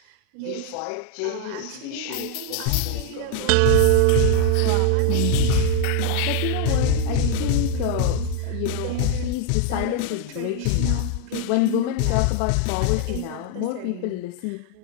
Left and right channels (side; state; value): both; different; correlation 0.00